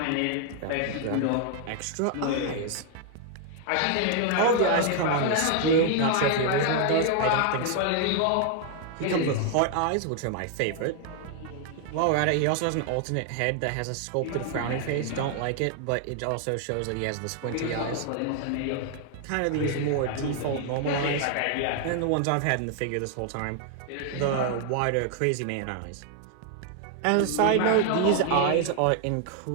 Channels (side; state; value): both; different; correlation 0.00